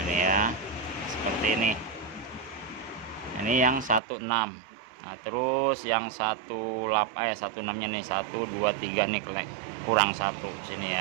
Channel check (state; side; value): drops out; left; at 4.0 s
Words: ini ya seperti ini. Ini yang 16. Nah, terus yang 16 nya nih 1 2 3 nih kurang 1